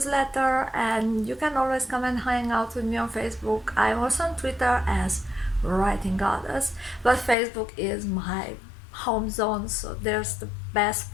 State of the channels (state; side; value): drops out; right; at 7.4 s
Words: and you can always come and hang out with me on Facebook. I'm also on Twitter as Writing Goddess, but Facebook is my home zone, so there's the best